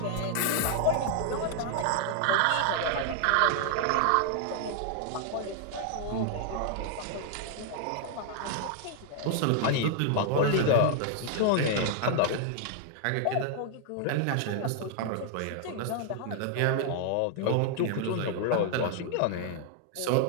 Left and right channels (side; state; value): both; different; correlation 0.00